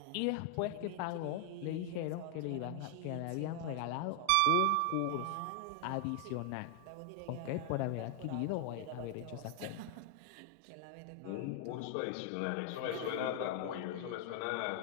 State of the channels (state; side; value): different; both; correlation 0.00